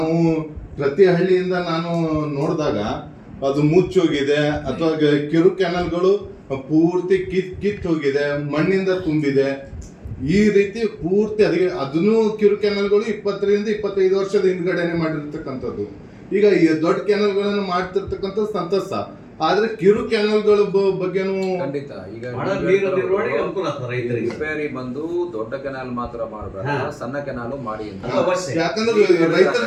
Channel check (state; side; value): identical; both; correlation 1.00